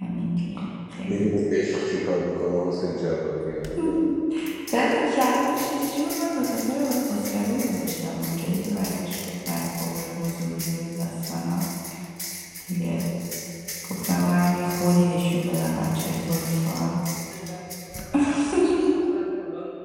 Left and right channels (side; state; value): both; identical; correlation 1.00